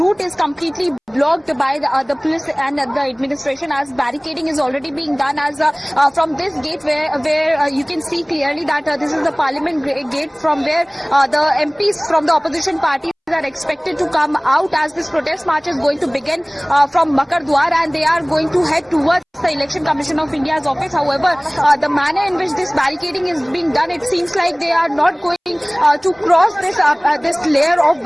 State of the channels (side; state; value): both; identical; correlation 1.00